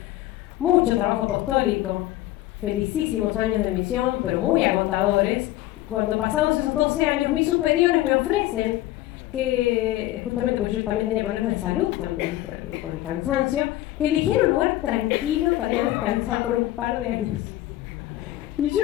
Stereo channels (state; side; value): quieter; right; 15.6 dB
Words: mucho trabajo apostólico, felicísimos años de misión, pero muy agotadores. Cuando pasados esos 12 años, mis superiores me ofrecen que, justamente porque yo también tenía problemas de salud también por el cansancio, que eligiera un lugar tranquilo para ir a descansar por un par de años. Y yo